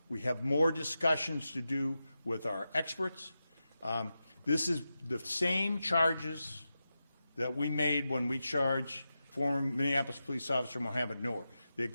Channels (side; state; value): both; inverted; correlation -0.91